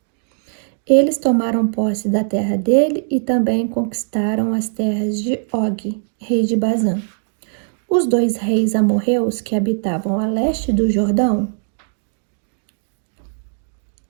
Eles tomaram posse da terra dele e também conquistaram as terras de Og, rei de Bazã. Os 2 reis amorreus que habitavam a leste do Jordão,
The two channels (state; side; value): silent; left; digital silence